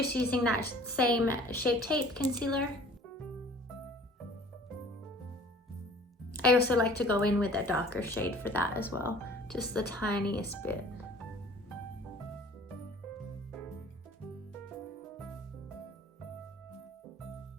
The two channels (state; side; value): normal; both; correlation 0.50